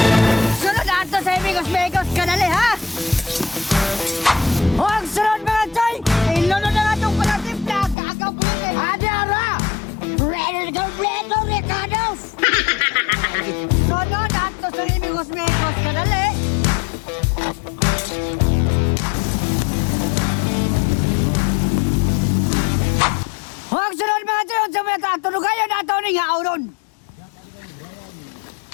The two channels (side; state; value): right; drops out; at 8.0 s